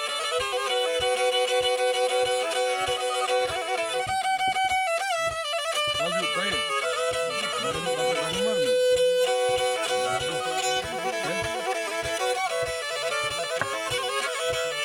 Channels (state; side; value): identical; both; correlation 1.00